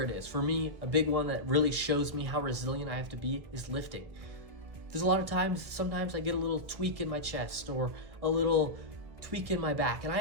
it is. For me, a big one that really shows me how resilient I have to be is lifting. There's a lot of times, sometimes I get a little tweak in my chest or a little tweak in my back, and I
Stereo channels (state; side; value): late; left; 1.5 ms